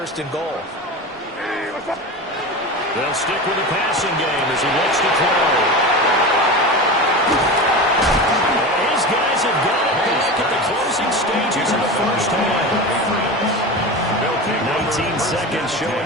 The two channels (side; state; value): both; normal; correlation 0.27